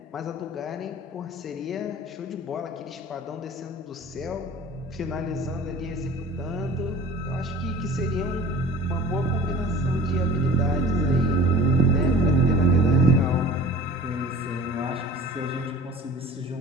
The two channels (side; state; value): both; normal; correlation 0.41